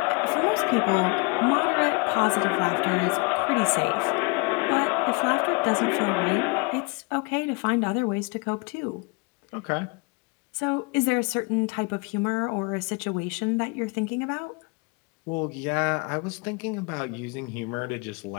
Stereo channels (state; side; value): quieter; right; 29.7 dB